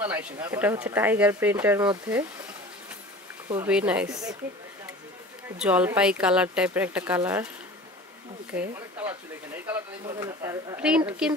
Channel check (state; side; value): normal; both; correlation 0.40